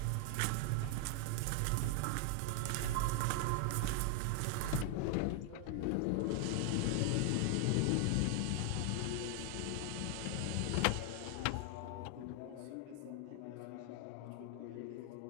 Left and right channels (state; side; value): different; both; correlation 0.00